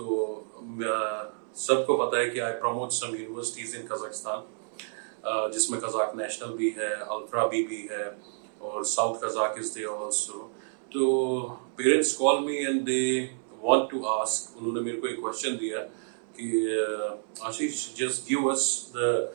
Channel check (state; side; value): silent; left; 58 dB below the other